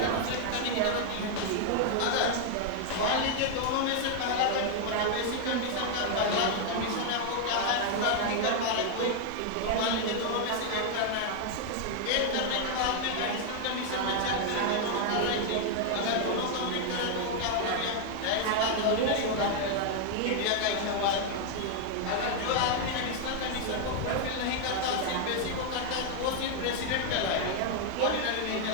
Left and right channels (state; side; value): different; both; correlation 0.00